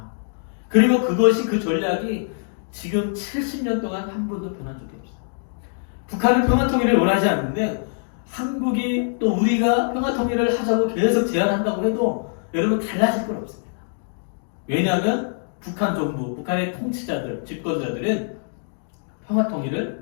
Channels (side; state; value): right; silent; digital silence